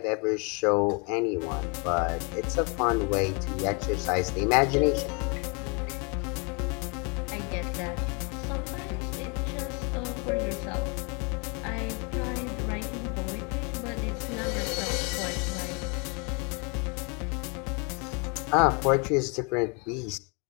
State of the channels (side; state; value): right; quieter; 32.9 dB